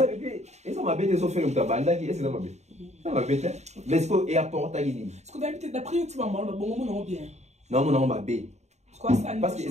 m'a bête de faire une tabanda qui est ça m'a bête ça m'a bête mais ce que et apporte à gini ce que d'habitude d'après tu vas mal bon non bien non ma bête quoi ça parce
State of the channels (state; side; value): late; left; 0.32 ms